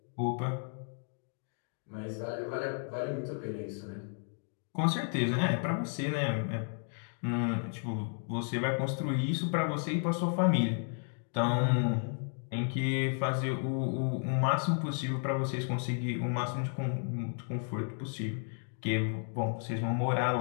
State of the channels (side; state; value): right; silent; 56 dB below the other